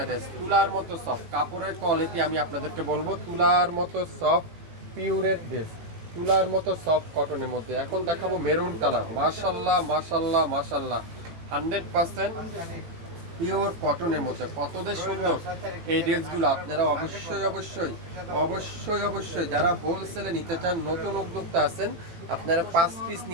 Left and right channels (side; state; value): left; late; 18 ms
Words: ড্রেস, তুলার মতো সফট কাপড়ের কোয়ালিটি আমি আপনাদেরকে বলবো, তুলার মতো সফট পিওরের ড্রেস, তুলার মতো সফট কটনের মধ্যে। এখন দেখাবো মেরুন কালার, মাশাল্লাহ মাশাল্লাহ মাশাল্লাহ, 100% পিওর কটনের মধ্যে। কতদের সুন্দর এই ড্রেসগুলো, আপনারা অবশ্যই অবশ্যই অবশ্যই অবশ্যই যারা হোলসেলে নিতে চান, নতুন উদ্যোক্তা আছেন, আপনারা 5 পিস